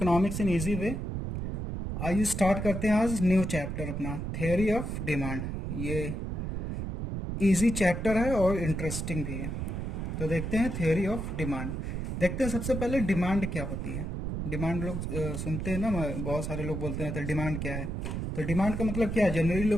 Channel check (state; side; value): noise; right; rumble, 3 dB below the sound